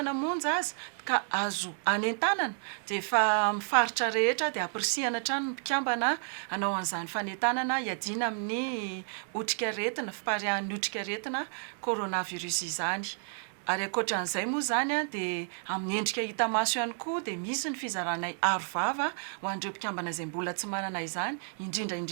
monja azy ka azo anentanana dia efa mifaritra rehetra dia ampirisihana hatrany mpikambana hanao an'izany fanentanana hiadiana amin'ny otrika aretina fiparihan'ny otrika aretina coronavirus izany. Ary ankoatran'izay moa zany dia amin'ny endrika hita maso ihany koa dia misy ny fizaranay arovava ho an'ireo mpikambana izay mbola tsy manana izany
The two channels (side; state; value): left; silent; 56 dB below the other